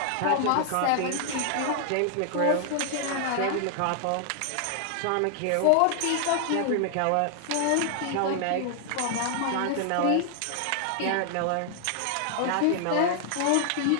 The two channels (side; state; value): both; different; correlation 0.00